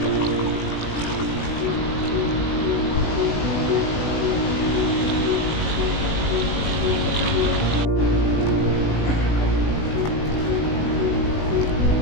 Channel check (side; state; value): right; late; 19 ms